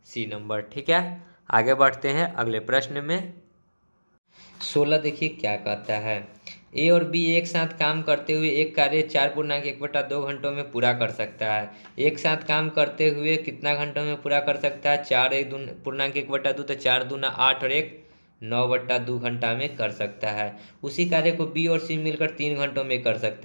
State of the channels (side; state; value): both; inverted; correlation -1.00